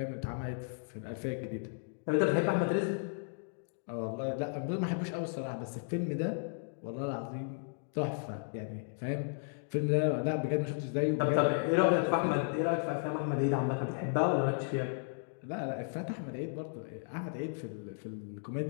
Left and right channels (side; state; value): right; silent; digital silence